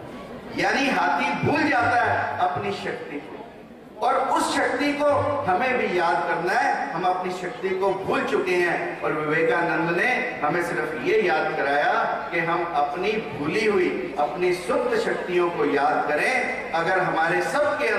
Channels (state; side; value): identical; both; correlation 1.00